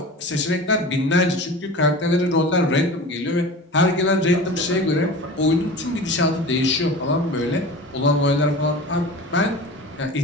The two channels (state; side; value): normal; both; correlation 0.35